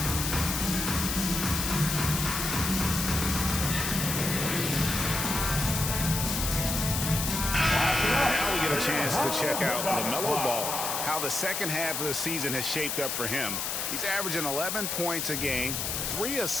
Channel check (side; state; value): left; noise; hiss, 1 dB below the sound